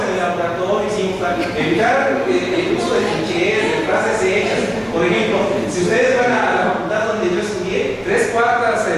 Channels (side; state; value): both; identical; correlation 1.00